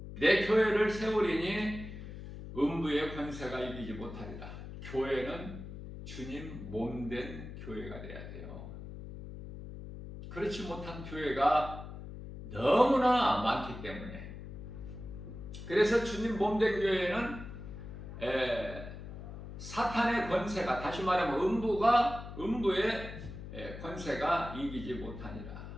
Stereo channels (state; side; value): noise; left; hum, 11 dB below the sound